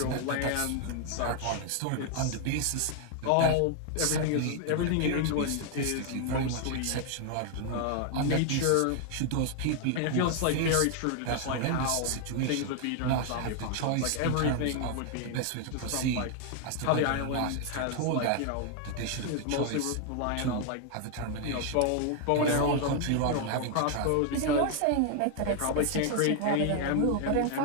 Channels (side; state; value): both; different; correlation 0.00